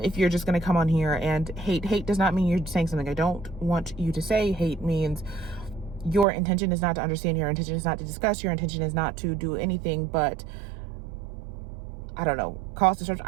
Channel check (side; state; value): left; drops out; at 6.2 s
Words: you're just going to come on here and hate does not mean you're saying something I don't want you to say. Hate means your intention is not to understand, your intention is not to discuss, your intention is not to do anything but, I don't know, cause